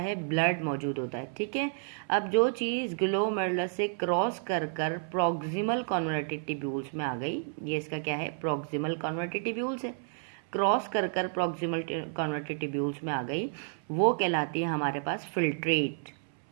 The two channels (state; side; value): silent; left; 57 dB below the other